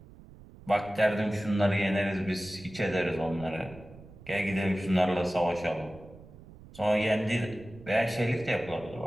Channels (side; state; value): right; noise; rumble, 20 dB below the sound